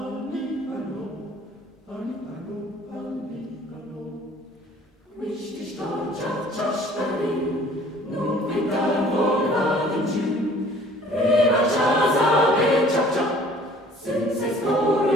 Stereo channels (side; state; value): both; normal; correlation 0.53